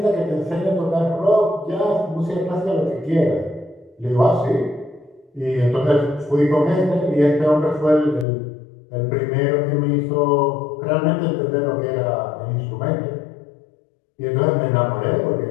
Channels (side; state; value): right; drops out; at 8.2 s